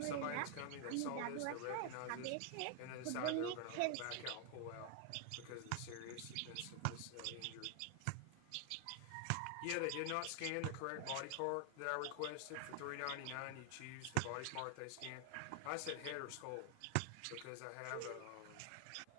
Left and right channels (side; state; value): both; different; correlation 0.00